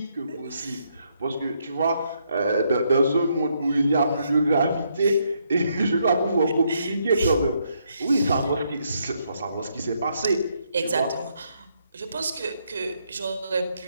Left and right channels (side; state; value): both; inverted; correlation -0.75